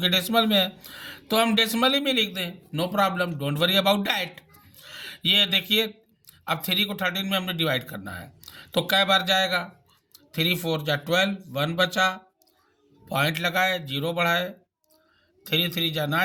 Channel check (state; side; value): identical; both; correlation 1.00